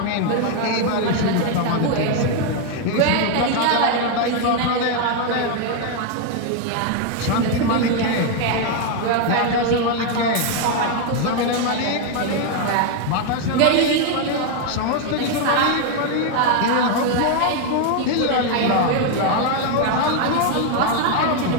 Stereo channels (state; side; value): different; both; correlation 0.01